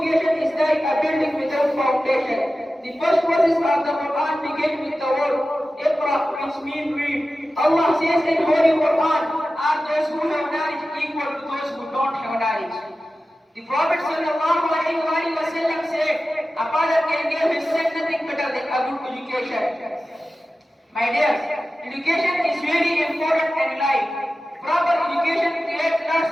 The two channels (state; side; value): normal; both; correlation 0.94